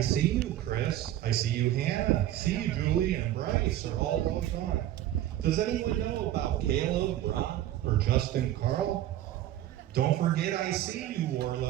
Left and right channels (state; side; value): quieter; left; 13.1 dB